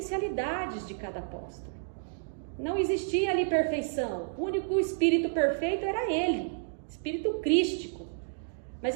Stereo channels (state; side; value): silent; left; digital silence